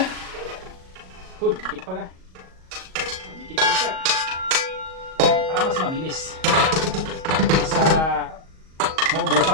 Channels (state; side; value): late; left; 38 ms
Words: Good, dikit pa ka. Dikit po siya. Para mas mabilis. Sa